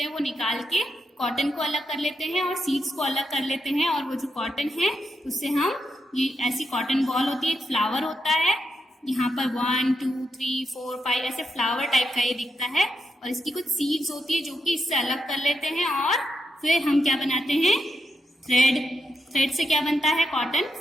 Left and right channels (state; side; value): normal; both; correlation 0.84